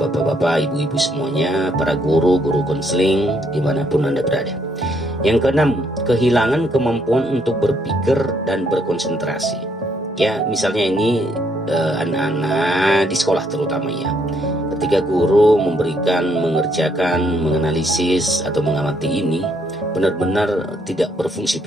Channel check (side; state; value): both; normal; correlation 0.71